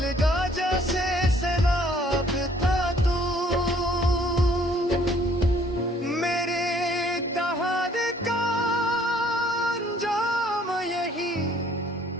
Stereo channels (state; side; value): normal; both; correlation 0.61